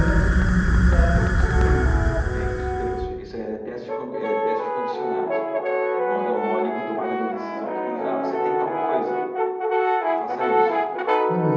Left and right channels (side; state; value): both; identical; correlation 1.00